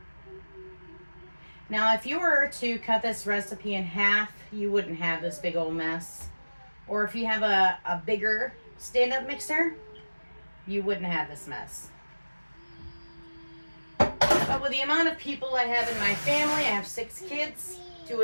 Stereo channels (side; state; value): both; inverted; correlation -1.00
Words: Now, if you were to cut this recipe in half, you wouldn't have this big old mess. Or if you have a bigger stand-up mixer, you wouldn't have this mess. But with the amount of people I have in my family, I have 6 kids, 2